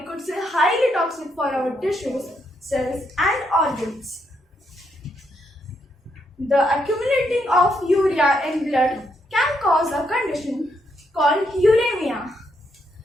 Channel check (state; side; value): normal; both; correlation 0.77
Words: say highly toxic for our tissues, cells and organs. The accumulating of urea in blood can cause a condition called uremia.